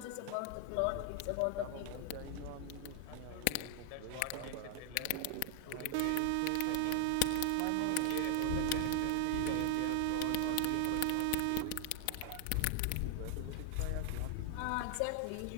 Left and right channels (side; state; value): both; different; correlation 0.00